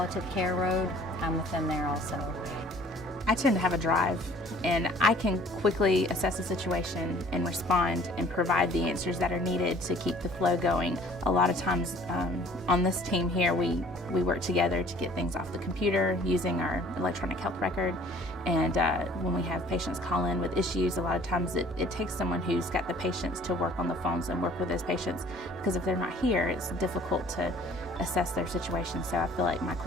care road, I'm with them there also. I tend to have a drive, and I can quickly assess a situation and respond and provide the answers that are needed to keep the flow going. A lot of times on this team here, we work together to get things off the computer using our electronic health record, and when we have patients call in with issues, a lot of times it takes someone who's got the patience to work on the phones and work with those patients, because if they're not here, it's difficult to assess their situation. So I feel like my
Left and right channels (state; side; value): normal; both; correlation 0.53